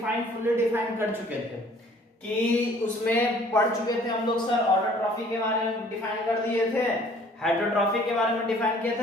फुल्ली डिफाइन कर चुके थे कि उसमें पढ़ चुके थे हम लोग सर। ऑटोट्रॉफी के बारे में डिफाइन कर दिए थे, हेटरोट्रॉफी के बारे में डिफाइन किए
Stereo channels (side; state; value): both; normal; correlation 0.55